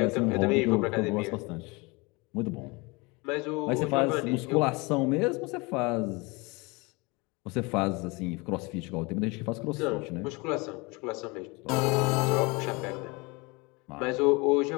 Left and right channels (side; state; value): right; quieter; 26.5 dB